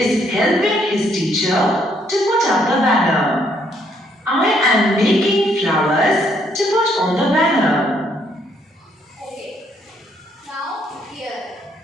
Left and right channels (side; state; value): both; normal; correlation 0.70